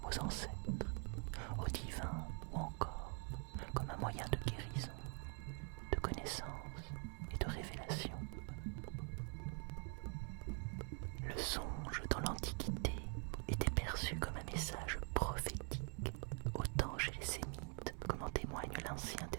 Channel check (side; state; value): left; quieter; 38.6 dB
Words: aux ancêtres, au divin ou encore comme un moyen de guérison, de connaissance et de révélation. Le songe dans l'Antiquité était perçu comme un message prophétique, autant chez les Sémites, comme en témoigne l'Ancien